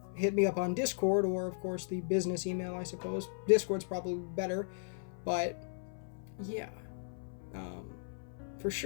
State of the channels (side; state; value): right; silent; 54 dB below the other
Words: hit me up on Discord or, of course, the business email, I suppose. Discord's probably better, but yeah. For